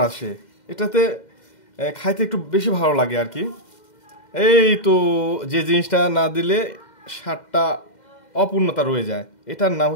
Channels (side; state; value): right; late; 2.1 ms